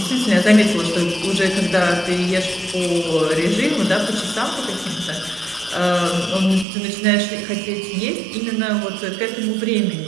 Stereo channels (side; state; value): left; drops out; at 6.7 s